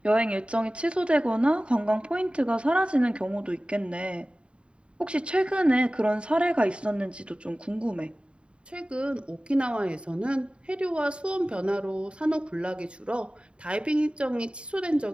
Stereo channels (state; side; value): late; left; 0.056 ms